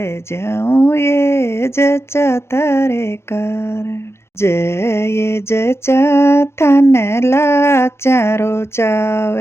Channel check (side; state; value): right; late; 0.12 ms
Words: जाऊं ये जचा तारे कारण। जय जचा थन लाचारो चाव